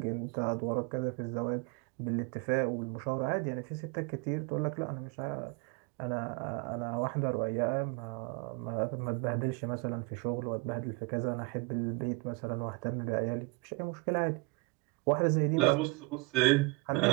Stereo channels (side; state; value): left; quieter; 26.9 dB